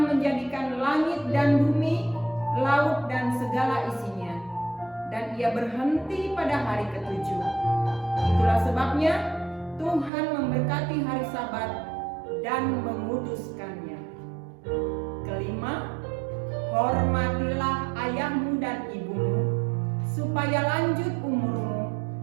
menjadikan langit dan bumi, laut dan segala isinya, dan Ia berhenti pada hari ke-7. Itulah sebabnya Tuhan memberkati hari Sabat dan menguduskannya. Kelima, hormatilah ayahmu dan ibumu, supaya lanjut umurmu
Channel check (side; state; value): left; drops out; at 10.1 s